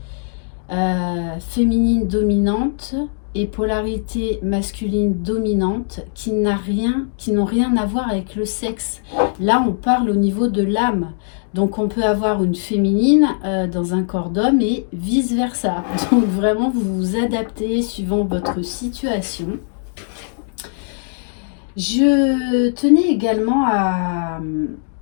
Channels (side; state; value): right; silent; digital silence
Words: féminine dominante et polarité masculine dominante qui n'ont rien à voir avec le sexe. Là, on parle au niveau de l'âme. Donc, on peut avoir une féminine dans un corps d'homme et vice-versa. Donc, vraiment, vous vous adaptez suivant votre situation. Je tenais également à